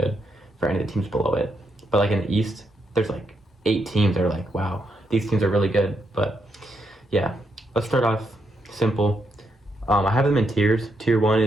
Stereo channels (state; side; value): normal; both; correlation 0.80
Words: for any of the teams below it. But like in the East, there's like 8 teams that are like, wow, these teams are really good. But yeah, let's start off simple. I have them in tiers. Tier 1